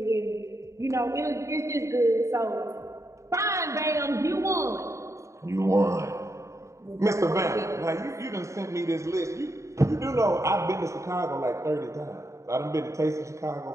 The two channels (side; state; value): left; late; 0.14 ms